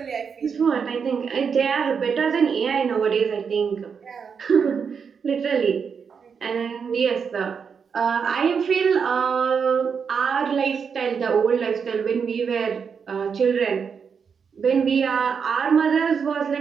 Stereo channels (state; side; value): quieter; left; 6.3 dB